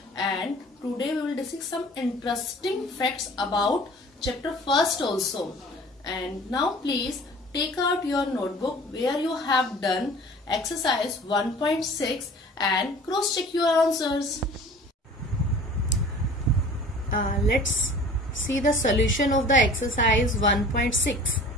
And today we will discuss some interesting facts about chapter first also. And now please take out your notebook where you have done exercise 1.6 and cross check your answers. Let's see the solution of the exercise 1.6.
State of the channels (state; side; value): normal; both; correlation 0.45